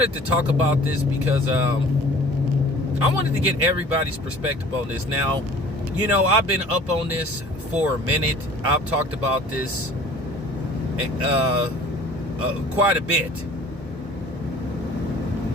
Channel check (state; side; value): normal; both; correlation 0.48